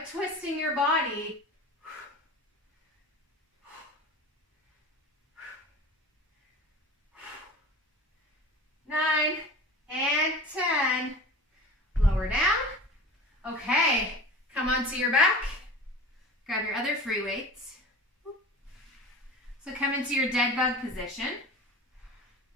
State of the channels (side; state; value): both; normal; correlation 0.37